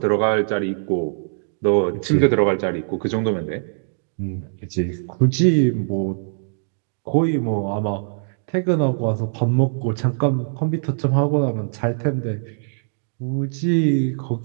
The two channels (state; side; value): silent; left; digital silence